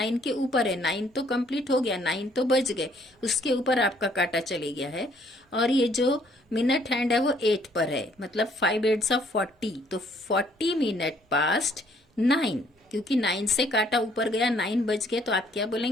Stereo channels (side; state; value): both; normal; correlation 0.64